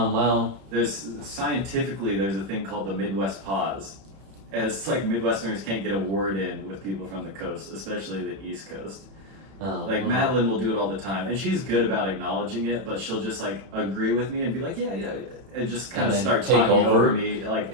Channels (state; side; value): late; left; 31 ms